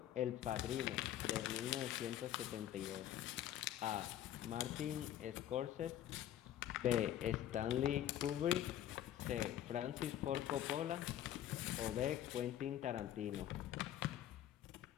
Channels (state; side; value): quieter; right; 11.6 dB